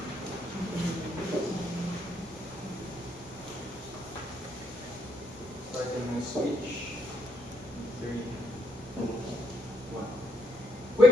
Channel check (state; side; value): normal; both; correlation 0.76